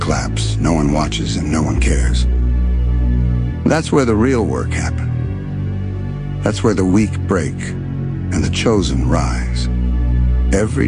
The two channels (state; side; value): identical; both; correlation 1.00